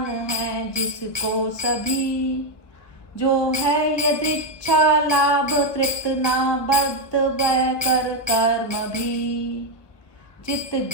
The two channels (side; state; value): right; late; 1.1 ms